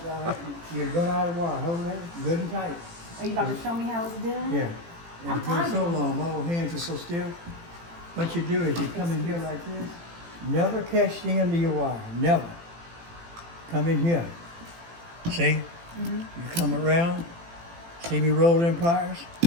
You run out of wire. Hold that good and tight. Are you about to show me how it's done? Yeah. I'm And it's been so timing. long, my old hands are so stiff. What you do is you come in here like this. Never catch the end of your wire. Never. Come in here. See? You come around. See me roll in pliers?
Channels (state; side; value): late; left; 18 ms